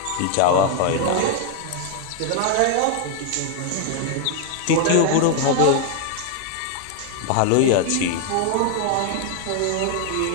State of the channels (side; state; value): both; different; correlation 0.00